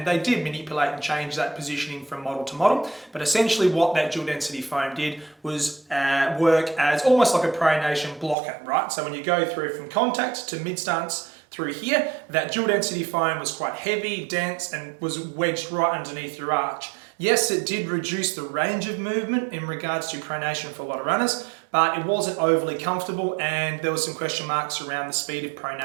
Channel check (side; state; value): left; drops out; at 8.3 s